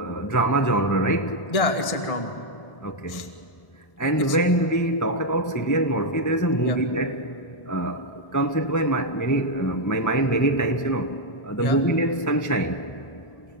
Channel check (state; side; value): late; right; 1.6 ms